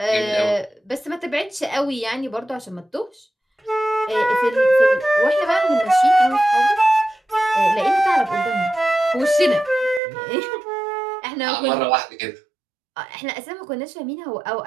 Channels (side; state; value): left; drops out; at 10.0 s